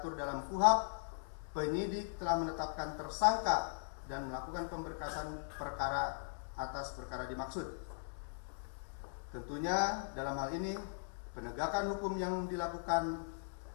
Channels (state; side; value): silent; right; digital silence